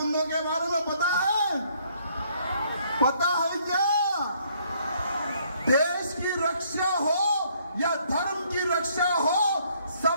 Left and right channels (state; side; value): inverted; both; correlation -0.66